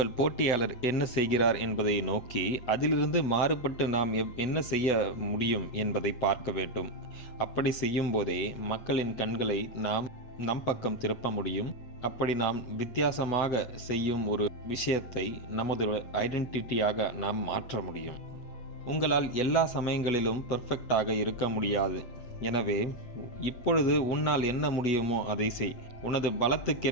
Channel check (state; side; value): late; right; 8.2 ms